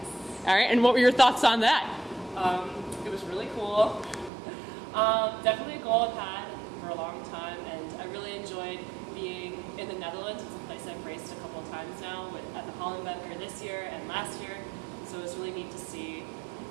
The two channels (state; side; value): drops out; left; at 4.3 s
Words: All right, and what were your thoughts on that? It was really cool. Definitely a goal I've had for a long time, and I really enjoyed being in the Netherlands. It's a place I've raced a couple of times now at the Hollandbeker this year and last year, so it was really neat to see